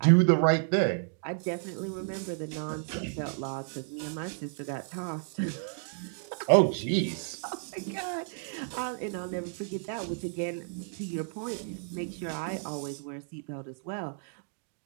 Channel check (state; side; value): silent; left; 57 dB below the other